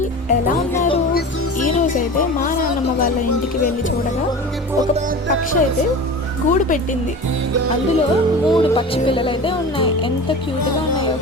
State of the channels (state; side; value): normal; both; correlation 0.34